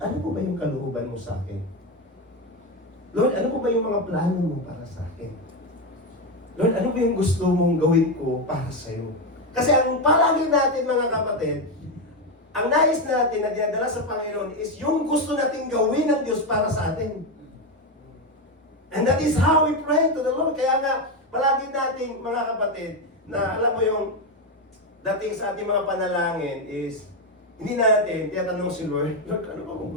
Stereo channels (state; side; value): normal; both; correlation 0.10